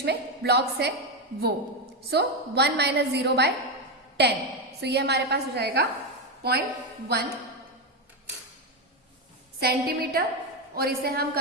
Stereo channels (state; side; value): normal; both; correlation 0.09